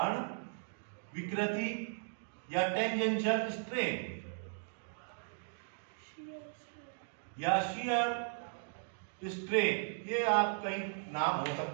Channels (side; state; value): left; silent; digital silence